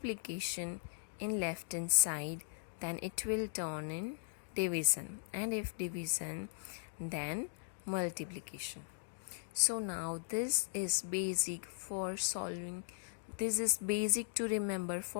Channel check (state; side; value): silent; right; digital silence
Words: in left hand side, then it will turn in division, and if division, then multiplication. So now this is basic for solving, this is basic to remember